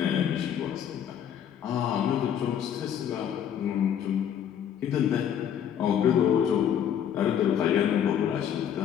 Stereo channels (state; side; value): quieter; right; 9.2 dB